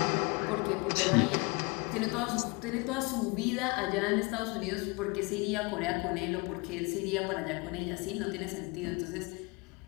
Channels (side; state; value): right; quieter; 27.5 dB